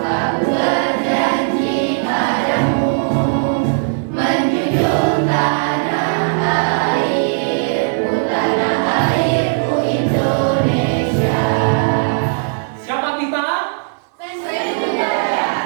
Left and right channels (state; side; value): silent; left; digital silence